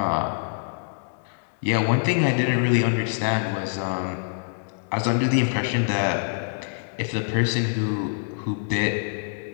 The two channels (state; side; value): silent; right; digital silence